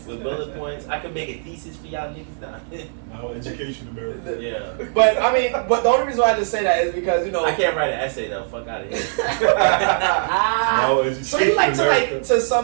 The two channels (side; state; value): left; silent; digital silence